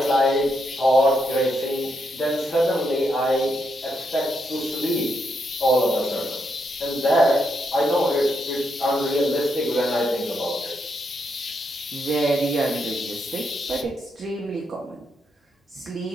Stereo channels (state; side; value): normal; both; correlation 0.80